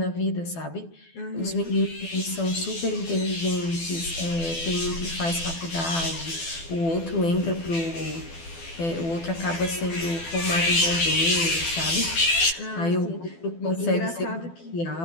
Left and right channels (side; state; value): right; late; 12 ms